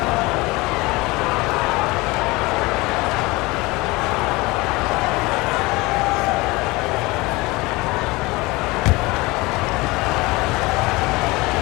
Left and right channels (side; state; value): right; quieter; 22.8 dB